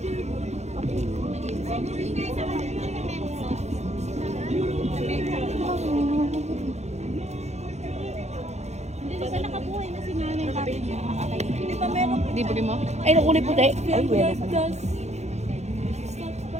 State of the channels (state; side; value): late; left; 0.32 ms